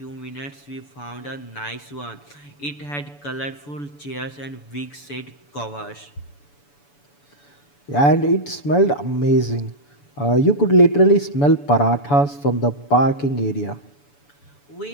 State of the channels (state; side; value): late; right; 7.0 ms